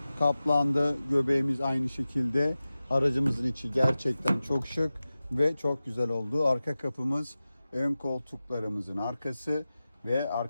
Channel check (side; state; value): both; inverted; correlation -0.95